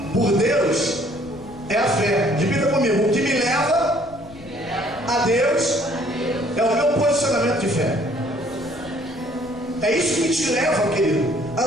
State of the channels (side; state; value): left; noise; rumble, 22 dB below the sound